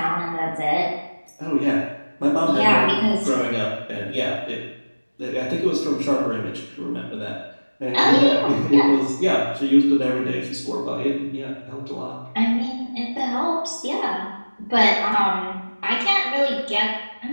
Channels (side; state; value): both; inverted; correlation -1.00